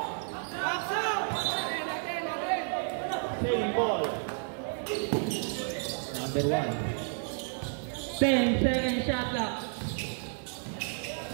Same ball. Number 1. 10-second shot clock.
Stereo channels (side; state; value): left; silent; 57 dB below the other